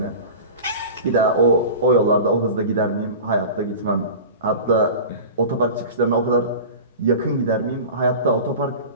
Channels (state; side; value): inverted; both; correlation -0.34